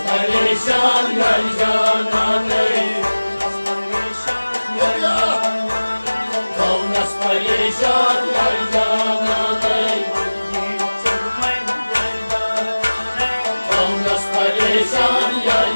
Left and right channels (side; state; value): both; inverted; correlation -1.00